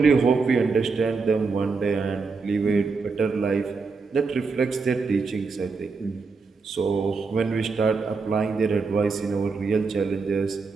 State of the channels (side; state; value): left; quieter; 4.6 dB